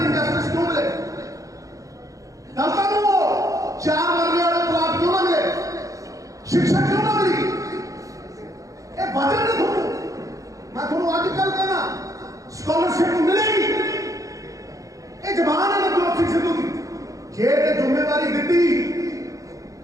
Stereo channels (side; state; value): left; late; 0.16 ms